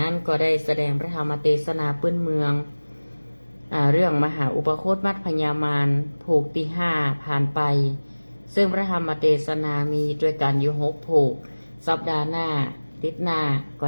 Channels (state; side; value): inverted; both; correlation -1.00